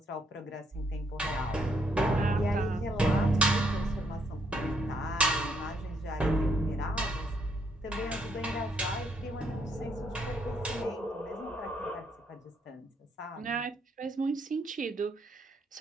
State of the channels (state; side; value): normal; both; correlation 0.73